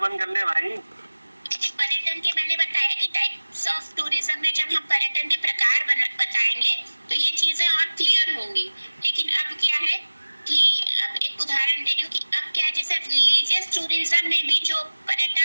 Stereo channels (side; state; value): both; inverted; correlation -1.00